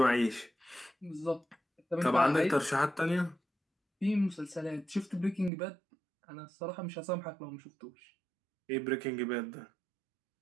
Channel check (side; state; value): left; drops out; at 5.5 s